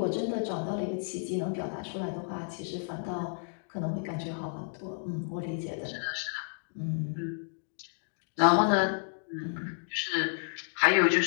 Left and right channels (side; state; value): right; silent; digital silence